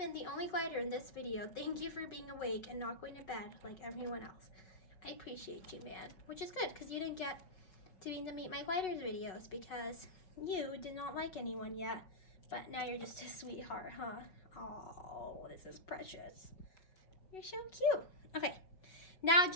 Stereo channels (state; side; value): late; right; 5.4 ms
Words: the only glider in this video. Thank you for being awake and not going to bed like everyone else. I appreciate you, man. Which is good, because you didn't get to be in the Meet My Gliders videos because you did not like anyone yet. But now you're just a sweetheart, huh? Oh, this is precious. You're so cute. Okay. Now,